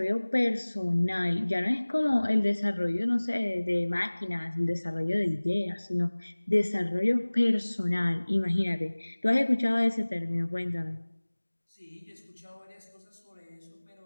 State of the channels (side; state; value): both; inverted; correlation -1.00